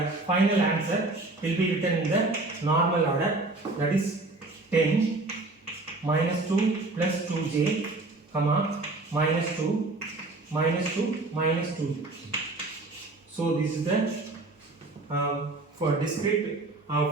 final answer will be written in the normal order, that is 10 minus 2 plus 2j, comma, minus 2 minus 2 minus 2. So this is the for discrete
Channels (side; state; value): left; quieter; 3.1 dB